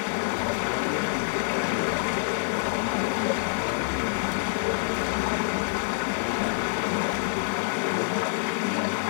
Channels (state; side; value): silent; right; 60 dB below the other